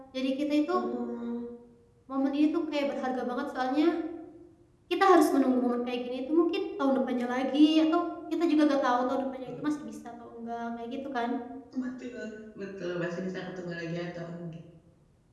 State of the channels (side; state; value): both; identical; correlation 1.00